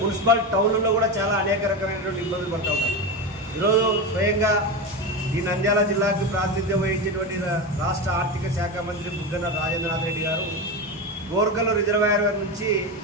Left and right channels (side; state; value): both; normal; correlation 0.18